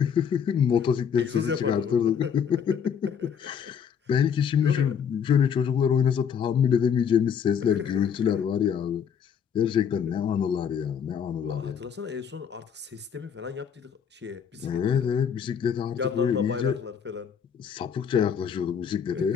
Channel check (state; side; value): quieter; right; 7.5 dB